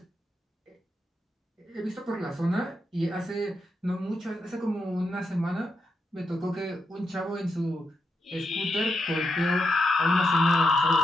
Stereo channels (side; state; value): both; normal; correlation 0.84